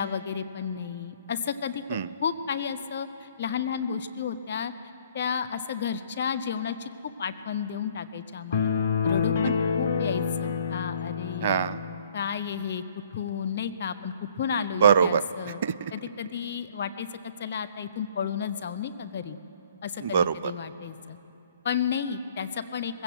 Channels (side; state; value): both; inverted; correlation -0.58